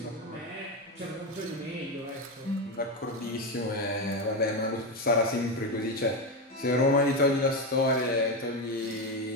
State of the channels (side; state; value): both; normal; correlation 0.12